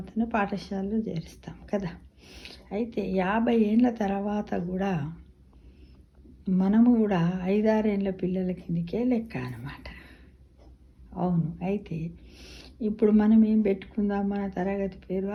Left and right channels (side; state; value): both; identical; correlation 1.00